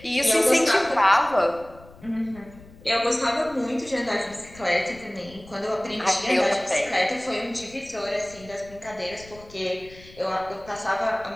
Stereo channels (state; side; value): noise; left; rumble, 21 dB below the sound